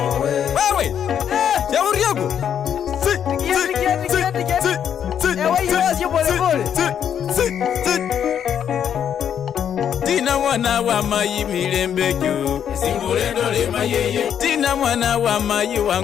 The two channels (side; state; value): right; quieter; 8.8 dB